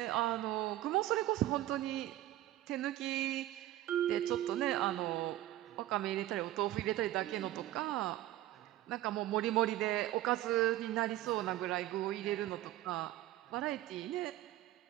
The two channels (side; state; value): left; quieter; 14.7 dB